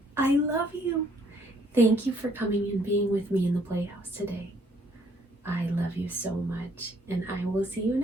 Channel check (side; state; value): both; normal; correlation 0.65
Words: I love you. Thank you for coming and being with me in the playhouse today. I love you so much, and I will see you